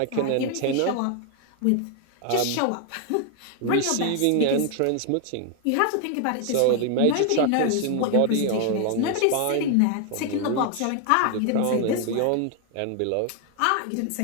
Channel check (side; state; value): both; different; correlation 0.01